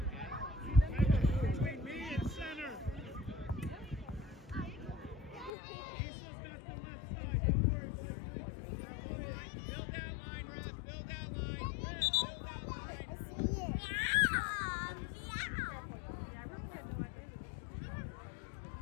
Between me and center. Eastland's got the left side. Don't worry, Blakely. Build that line, Ref. Build that line. Build that line.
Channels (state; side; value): drops out; right; at 5.5 s